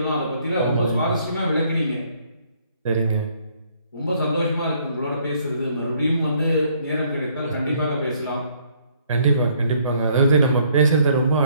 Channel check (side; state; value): both; inverted; correlation -0.65